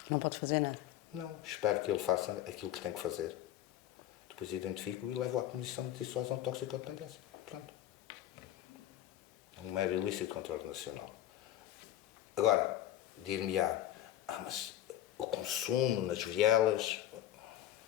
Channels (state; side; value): quieter; right; 12.8 dB